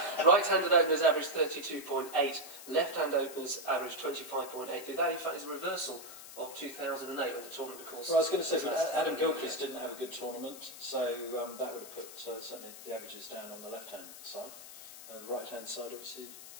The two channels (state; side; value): noise; left; hiss, 14 dB below the sound